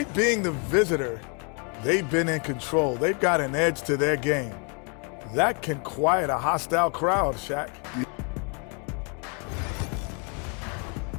being the visitor, they've been in control. They've got an edge to their game. That can quiet a hostile crowd, Shaq.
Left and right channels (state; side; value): quieter; right; 36.8 dB